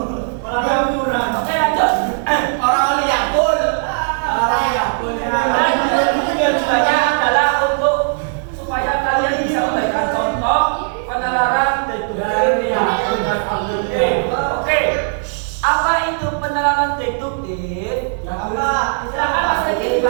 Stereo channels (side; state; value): left; silent; digital silence